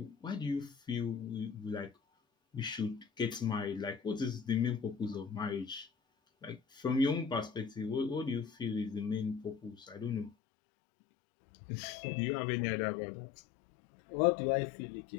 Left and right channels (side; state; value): right; drops out; at 10.4 s